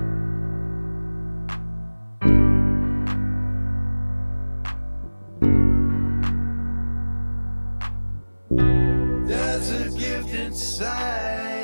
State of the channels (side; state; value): both; inverted; correlation -1.00